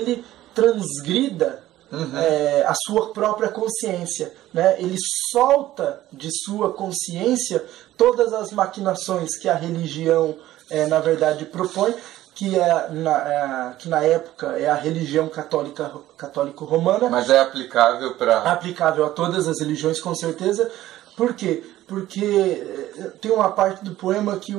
transgrida a sua própria consciência, né? Ele solta de sua consciência todas as maquinações que a religião na verdade propõe, que na época é a religião católico-romana. Mas é aplicável a todas as religiões, com certeza. Por quê? Porque tem uma parte do poema que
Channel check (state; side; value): quieter; left; 14.7 dB